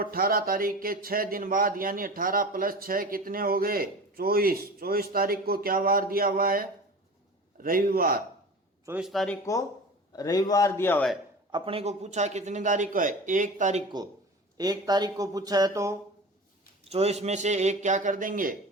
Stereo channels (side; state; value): both; normal; correlation 0.35